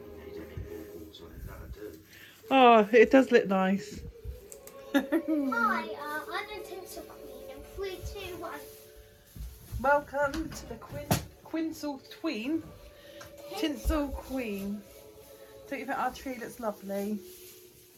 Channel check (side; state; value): both; identical; correlation 1.00